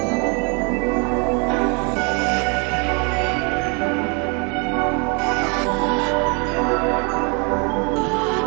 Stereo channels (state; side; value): quieter; left; 33.9 dB